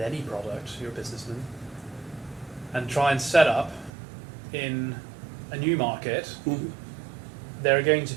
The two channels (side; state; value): left; drops out; at 3.9 s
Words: any product, you're a businessman, and try and set up in a new market, there are going to